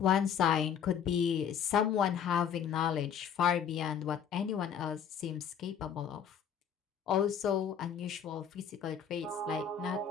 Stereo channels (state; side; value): quieter; right; 7.8 dB